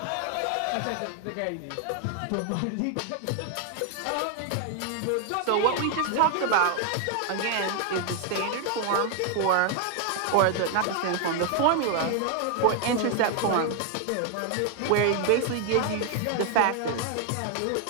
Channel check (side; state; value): both; different; correlation 0.00